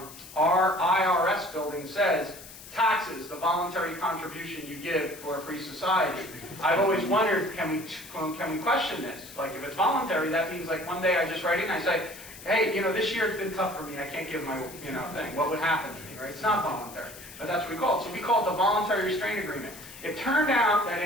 IRS building says, taxes, the voluntary contribution you give for a free society. I've always wondered, can we question this? Like if it's voluntary, that means like one day I just write in and I say, hey, this year it's been tough for me. I can't give my, thing. What would happen to me, right? It's not voluntary. But that's what we call it. So we call it the Voluntary Restraint Agreement. It turned out that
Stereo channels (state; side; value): noise; left; hiss, 16 dB below the sound